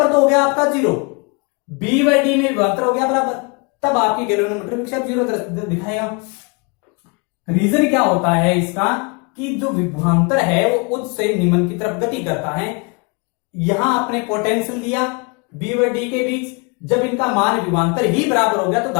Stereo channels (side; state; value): right; quieter; 32.2 dB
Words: तो हो गया आपका 0, बी बाई डी में विभवांतर हो गया बराबर, तब आपकी गैल्वेनोमीटर विक्षेप 0 दिखाएगा। रीजन क्या होता है इसका कि जो विभवांतर है वो उच्च से निम्न की तरफ गति करता है। यहां आपने पोटेंशियल दिया बी व डी के बीच, जब इनका मान विभवांतर ही बराबर हो गया तो